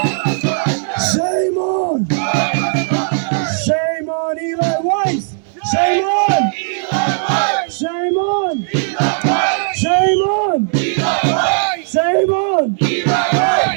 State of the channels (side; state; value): left; silent; digital silence